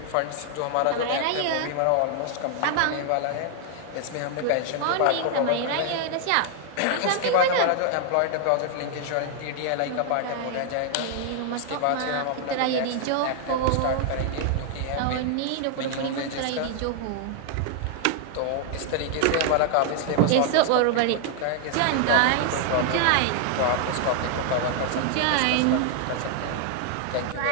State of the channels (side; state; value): both; different; correlation 0.00